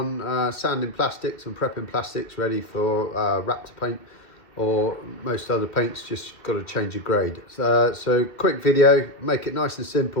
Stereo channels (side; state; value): right; late; 2.0 ms